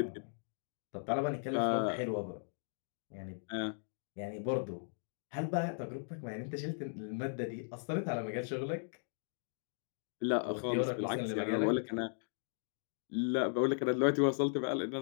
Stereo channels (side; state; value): right; silent; digital silence